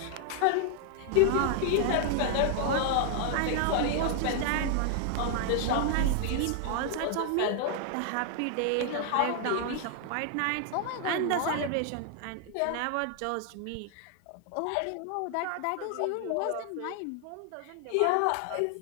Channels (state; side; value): different; both; correlation 0.00